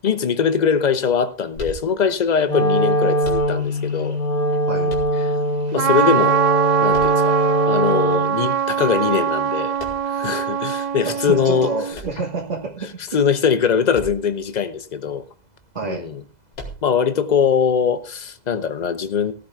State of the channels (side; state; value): right; late; 2.0 ms